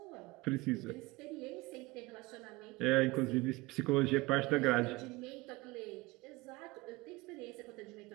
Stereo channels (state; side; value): quieter; left; 21.9 dB